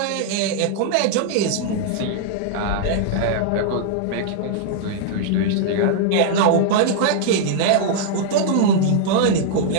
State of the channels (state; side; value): different; both; correlation -0.01